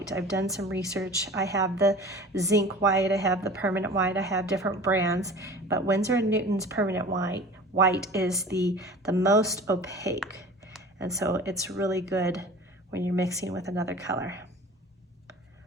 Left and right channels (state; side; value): normal; both; correlation 0.41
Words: I've done some research. I have the zinc white, I have the permanent white, I have different brands, but Winsor & Newton's permanent white is the most opaque. And so it's really good when you're mixing with another color.